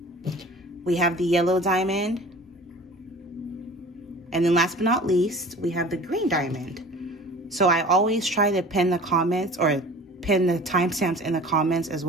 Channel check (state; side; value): normal; both; correlation 0.42